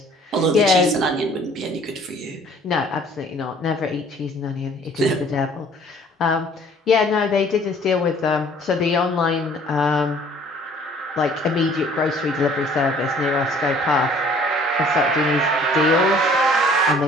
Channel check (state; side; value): normal; both; correlation 0.55